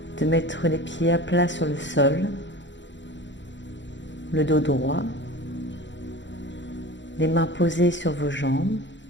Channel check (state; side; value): late; right; 0.53 ms